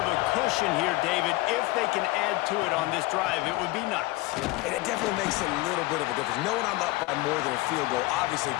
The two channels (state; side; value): quieter; right; 20.1 dB